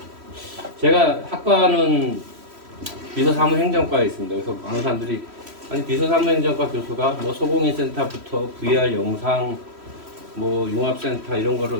제가 학과는 비서사무행정과에 있습니다. 그래서 많은 사람들이 아니 비서사무행정과 교수가 뭐 소공인 센터부터 VR 영상 뭐 융합센터 이런 거를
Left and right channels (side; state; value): left; late; 3.1 ms